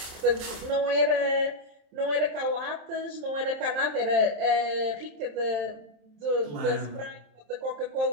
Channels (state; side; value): late; left; 27 ms